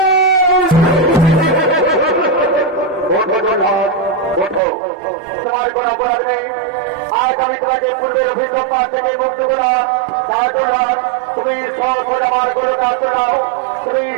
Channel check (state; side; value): drops out; left; at 4.6 s